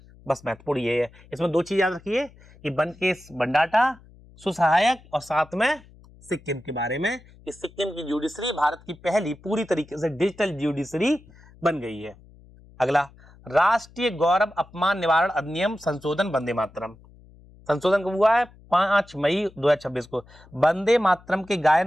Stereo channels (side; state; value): left; noise; hum, 25 dB below the sound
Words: बस महत्वपूर्ण ये है, इसमें दो चीज याद रखिए कि वन केस वन डाटा, सुसहायक, और साथ में सिक्किम के बारे में कि सिक्किम की जुडिशरी भारत की पहली पूरी तरीके से डिजिटल जुडिशरी बन गई है। अगला राष्ट्रीय गौरव अपमान निवारण अधिनियम संशोधन, वंदे मातरम। संशोधन कब हुआ है? 5 मई 2026 को। वंदे मातरम के